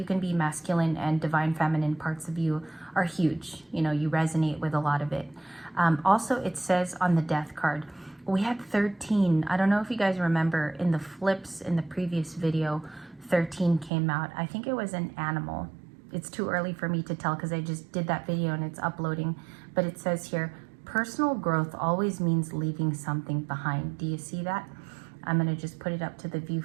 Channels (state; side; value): drops out; left; at 13.9 s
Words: can be masculine, and divine feminine parts of you are huge. You know, you resonate with a lot of it. Also, it says on the Death card, we had 13. I don't know if you guys remember in the flips in the previous video, 13 came out. I think it was an animal. It's too early for me to tell because I just did that video and it's uploading. But it says here, personal growth always means leaving something behind. Do you see that? I'm going to just put it up to the